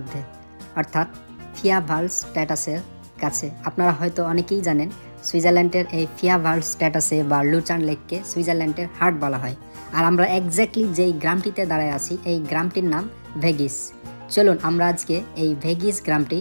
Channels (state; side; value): inverted; both; correlation -1.00